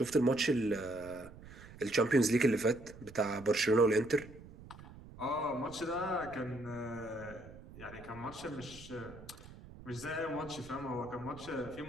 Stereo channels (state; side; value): noise; right; rumble, 17 dB below the sound